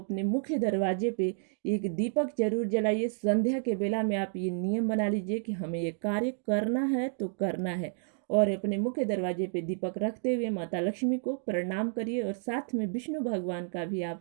मुख्य दरवाजे पे एक दीपक जरूर जलाइए। संध्या के बेला में आप ये नियम बना लीजिए कि हमें ये कार्य करना है तो करना है, और अपने मुख्य दरवाजे पे दीपक रखते हुए माता लक्ष्मी को प्रणाम करिए, और साथ में विष्णु भगवान का भी आप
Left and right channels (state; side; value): silent; left; digital silence